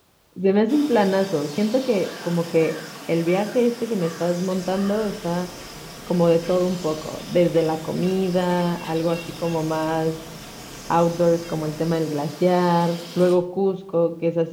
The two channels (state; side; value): identical; both; correlation 1.00